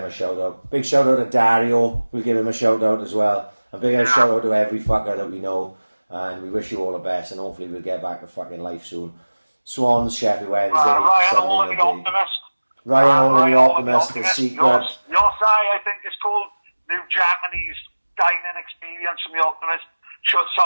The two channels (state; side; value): inverted; both; correlation -1.00